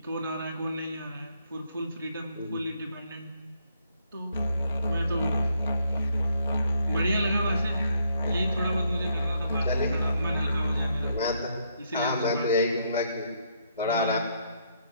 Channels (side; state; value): both; inverted; correlation -0.73